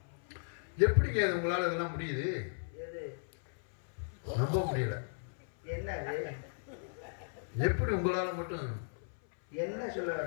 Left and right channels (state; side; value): silent; right; 54 dB below the other